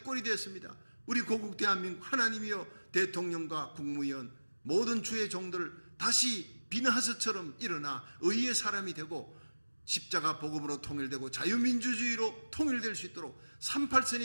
되었습니다. 우리 고국 대한민국 하나님이여 대통령과 국무위원 모든 주의 종들을 다시 비나하스처럼 일어나 의의 사람이 되고 십자가 복음으로 통일되고 자유민주주의로 통일될 수 있도록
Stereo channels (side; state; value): both; inverted; correlation -1.00